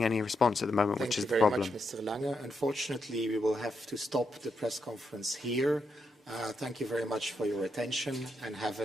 any response at the moment, which is the problem. Thank you very much, Mr. Lange. Unfortunately, we will have to stop the press conference here. Thank you very much for your attention and have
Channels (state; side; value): normal; both; correlation 0.82